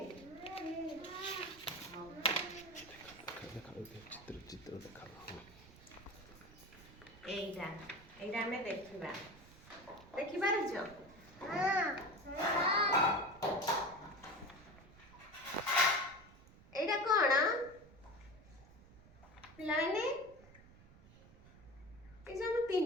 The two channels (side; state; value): right; noise; rumble, 21 dB below the sound